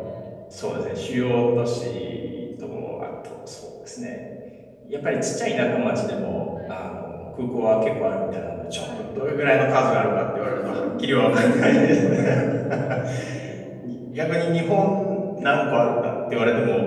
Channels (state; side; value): identical; both; correlation 1.00